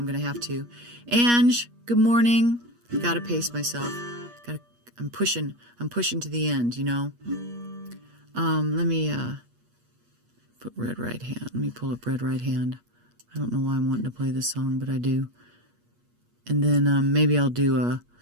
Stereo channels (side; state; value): left; late; 8.4 ms